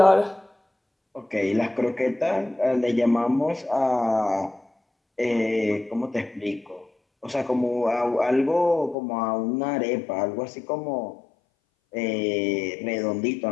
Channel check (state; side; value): drops out; right; at 9.0 s